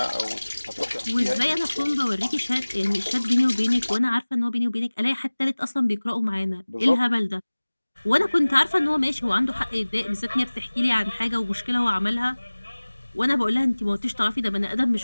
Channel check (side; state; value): both; inverted; correlation -1.00